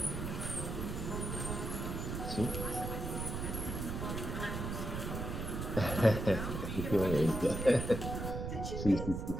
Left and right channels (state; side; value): noise; right; rumble, 4 dB below the sound